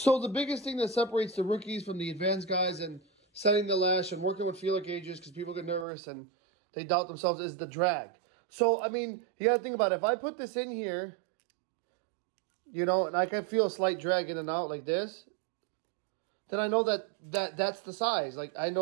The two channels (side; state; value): left; drops out; at 5.9 s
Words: the biggest thing that separates the rookies from the advanced guys and setting the lash and working with feeler gauges, because people get nervous and they doubt themselves, is the drag. So, I mean, you got to think about it. If I put this in here, you know, and I can feel a slight drag in and out like this, then I know that's the size. Like, I